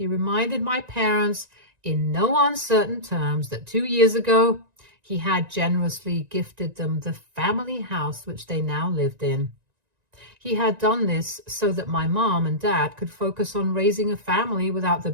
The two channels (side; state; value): left; late; 1.9 ms